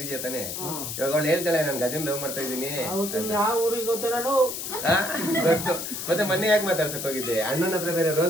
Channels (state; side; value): noise; left; hiss, 6 dB below the sound